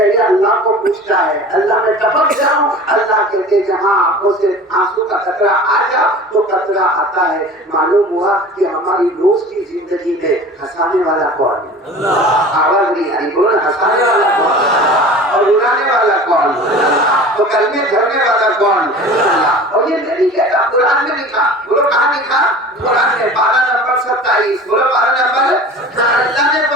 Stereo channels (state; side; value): normal; both; correlation 0.40